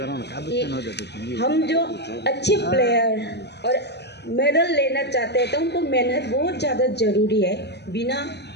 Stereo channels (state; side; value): late; right; 0.49 ms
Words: कि हम जो अच्छे प्लेयर और मेडल लेना चाहते हैं तो उनको मेहनत बहुत ज़्यादा ज़रूरी है, बिना